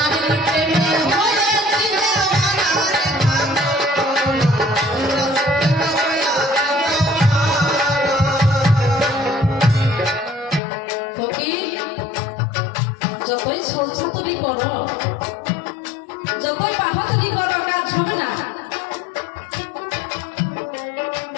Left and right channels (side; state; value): right; drops out; at 10.6 s